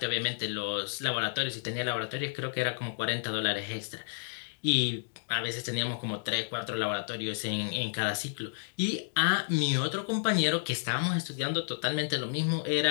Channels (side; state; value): right; silent; digital silence